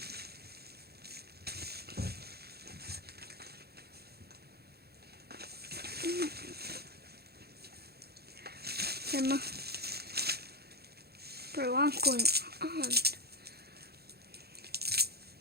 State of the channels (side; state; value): left; late; 0.46 ms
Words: Bro, what's going on?